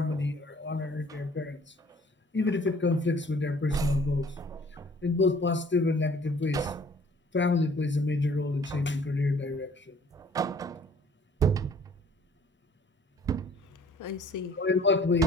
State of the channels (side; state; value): both; normal; correlation 0.55